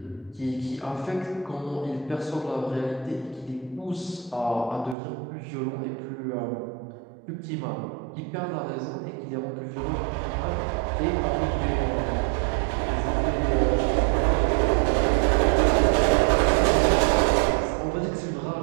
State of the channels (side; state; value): left; drops out; at 5.0 s